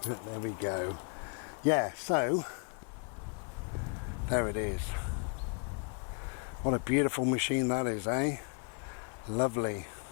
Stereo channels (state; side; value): quieter; right; 38.6 dB